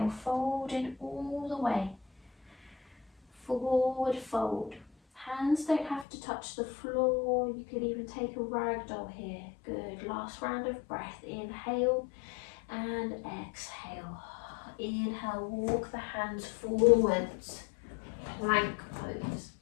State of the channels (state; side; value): drops out; right; at 6.1 s